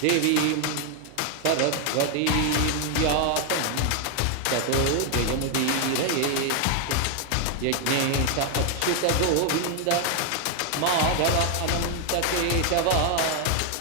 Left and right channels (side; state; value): both; different; correlation 0.00